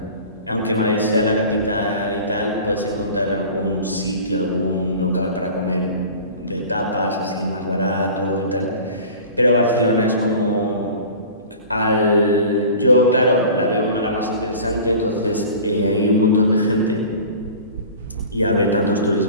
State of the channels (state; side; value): inverted; both; correlation -0.40